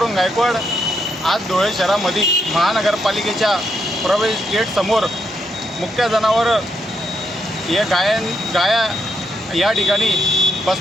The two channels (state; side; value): normal; both; correlation 0.79